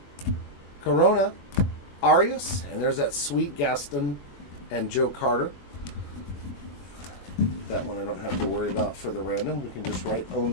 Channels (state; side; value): late; right; 21 ms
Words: Corona, Arias, and there's that sweet Gaston and Joe Carter. That one I don't have to worry about for the random. We can just write own